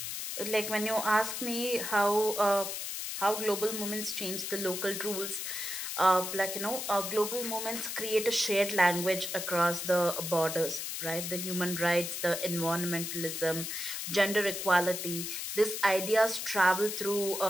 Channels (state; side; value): noise; left; hiss, 5 dB below the sound